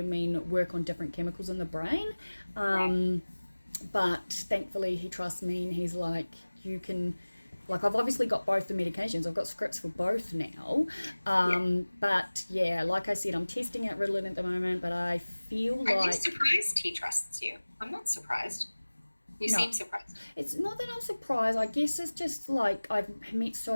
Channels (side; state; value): both; inverted; correlation -1.00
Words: work on different chemicals in the brain. But thankfully he trusts me, and he's like, you can, like, I've obviously got both the medications. I've got scripts for both now. But yeah, like I said, I'm testing out Ritalin at the moment, but I feel like... Are you surprised he trusts you? I'm not surprised. You seem surprised. It's not that I'm surprised. I guess it's just like I've met